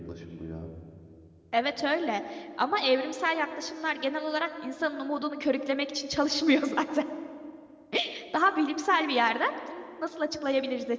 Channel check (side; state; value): both; identical; correlation 1.00